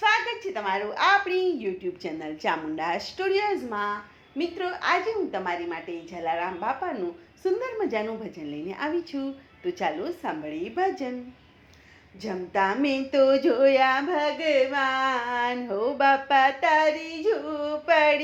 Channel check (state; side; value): identical; both; correlation 1.00